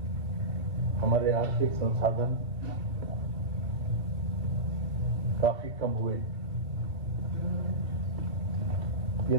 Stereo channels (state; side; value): late; left; 2.5 ms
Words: हमारे आर्थिक संसाधन काफी कम हुए।